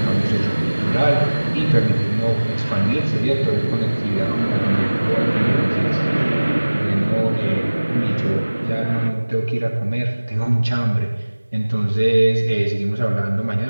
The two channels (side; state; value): both; inverted; correlation -1.00